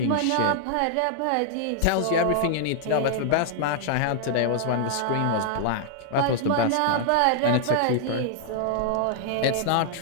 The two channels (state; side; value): different; both; correlation -0.01